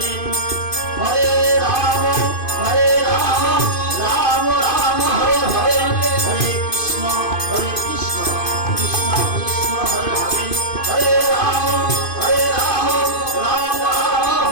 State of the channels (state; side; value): late; right; 2.5 ms